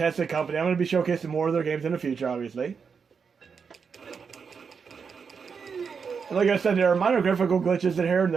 company. I'm going to be showcasing more of their games in the future, obviously. And like I said, there are minor graphical glitches in here and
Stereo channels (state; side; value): quieter; left; 5.9 dB